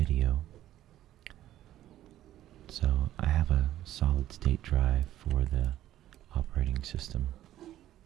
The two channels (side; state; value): left; quieter; 13.1 dB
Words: So I have a solid state drive for the operating system,